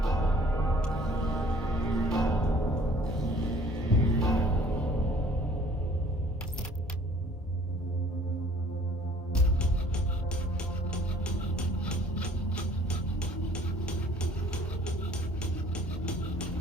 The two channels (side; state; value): both; normal; correlation 0.55